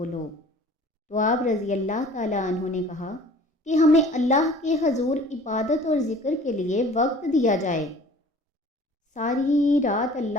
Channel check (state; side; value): normal; both; correlation 0.48